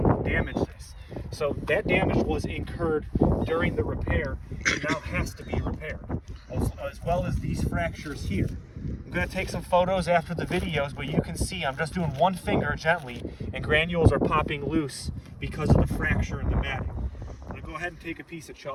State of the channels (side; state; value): both; identical; correlation 1.00